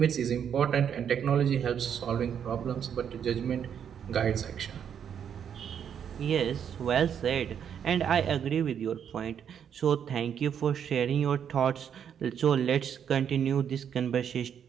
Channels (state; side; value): quieter; left; 8.4 dB